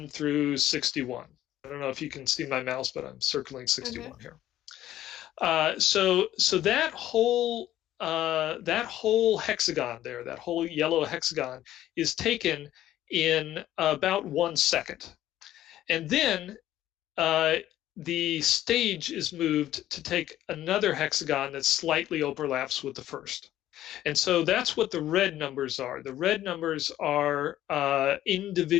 through 61. I don't know if you can see my mouse, but I'm circling 61 here. So that whole hexagon there, that whole yellow hexagon, is taken in about 1 second. And then the stage is moved to take another hexagon that slightly overlaps with the first. And so that's what the red numbers are. The red numbers are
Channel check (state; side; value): quieter; right; 13.2 dB